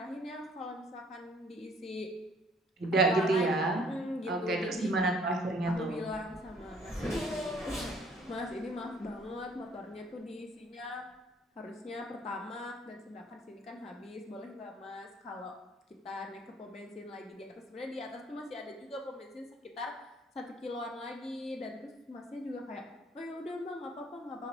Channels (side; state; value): both; normal; correlation 0.59